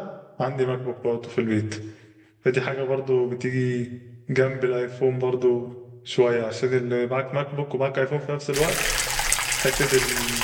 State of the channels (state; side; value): identical; both; correlation 1.00